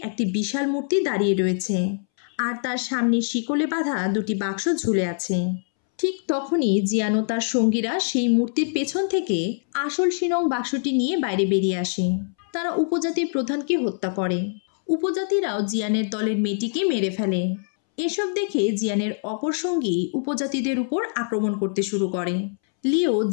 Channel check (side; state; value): right; silent; 63 dB below the other